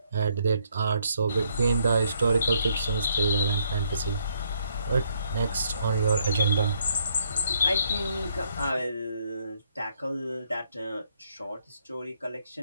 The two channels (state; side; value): inverted; both; correlation -0.71